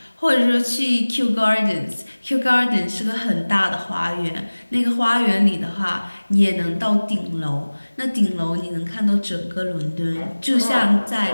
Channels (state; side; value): inverted; both; correlation -1.00